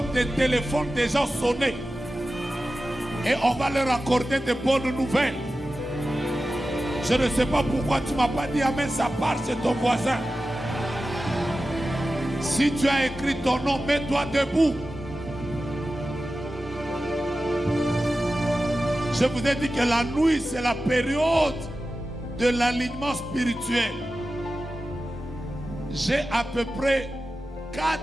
des téléphones des gens sonner. Et on va leur accorder de bonnes nouvelles. Je ne sais pas pourquoi tu ne m'as pas dit amen, ça part chez ton voisin. Si tu as écrit ton nom, mets-toi debout. Je vous ai dit que la nuit, c'est la période de l'alignement spirituel. J'ai à peu près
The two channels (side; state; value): both; normal; correlation 0.94